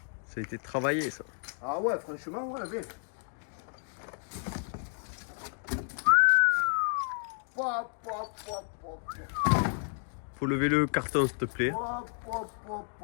Ça a été travaillé, ça. Ah ouais, franchement, ouais, viens. Faut lever le carton, s'il te plaît.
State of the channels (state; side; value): silent; right; 57 dB below the other